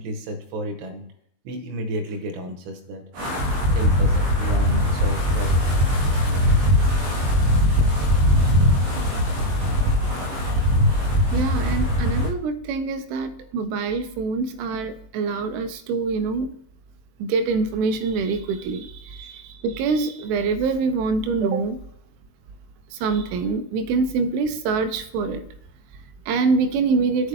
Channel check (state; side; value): late; left; 23 ms